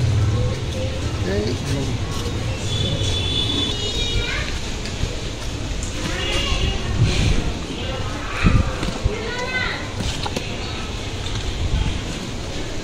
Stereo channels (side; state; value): both; identical; correlation 1.00